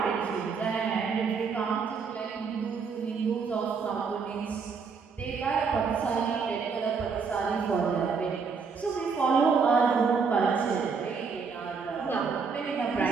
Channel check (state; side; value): quieter; left; 5.4 dB